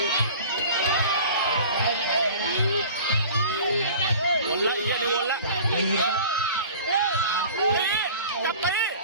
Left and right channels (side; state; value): both; inverted; correlation -0.42